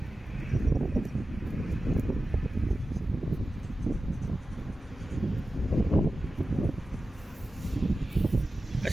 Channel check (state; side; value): normal; both; correlation 0.94